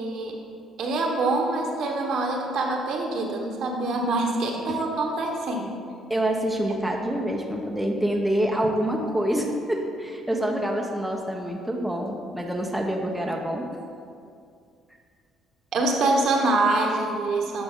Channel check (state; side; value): normal; both; correlation 0.72